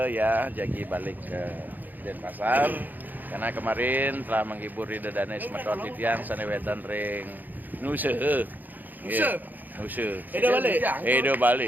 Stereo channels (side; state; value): left; late; 0.085 ms